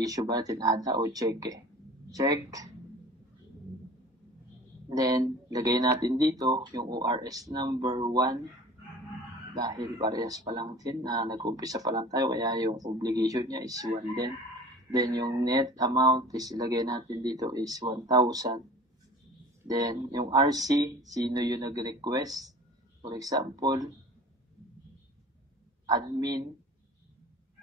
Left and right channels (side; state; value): both; normal; correlation 0.43